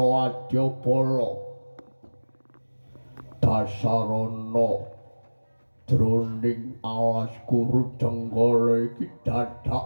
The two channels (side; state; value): both; inverted; correlation -1.00